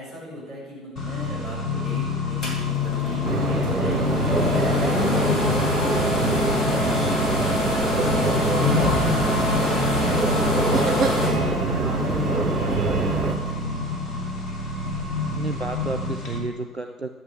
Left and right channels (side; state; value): both; normal; correlation 0.34